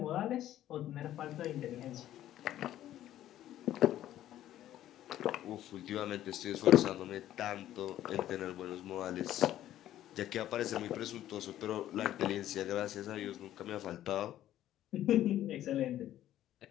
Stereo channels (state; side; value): quieter; right; 12.7 dB